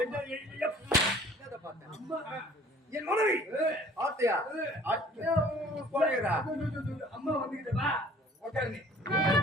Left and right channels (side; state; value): both; normal; correlation 0.52